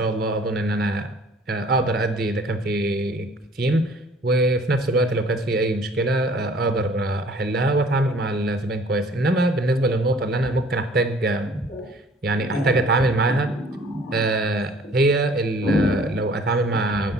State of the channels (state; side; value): normal; both; correlation 0.54